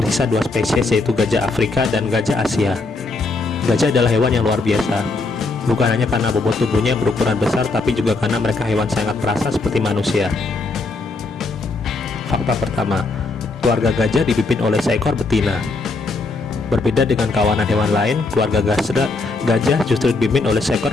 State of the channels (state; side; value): quieter; right; 3.5 dB